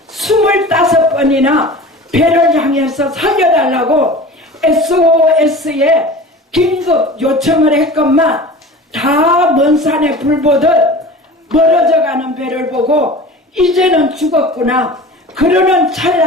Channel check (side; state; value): both; normal; correlation 0.37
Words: 25번이나 배를 향해서 살려달라고 SOS에 긴급 요청을 했건만 다 먼 산에 불 보듯 멀어져가는 배를 보고 이제는 죽었구나. 그러는